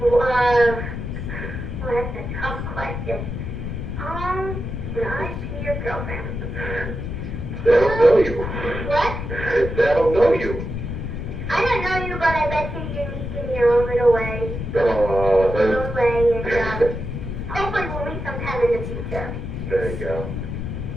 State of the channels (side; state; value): left; noise; rumble, 5 dB below the sound